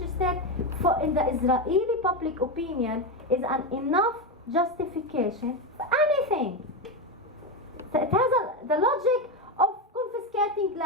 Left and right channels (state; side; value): normal; both; correlation 0.12